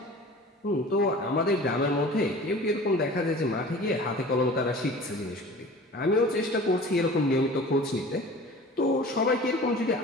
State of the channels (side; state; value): both; normal; correlation 0.41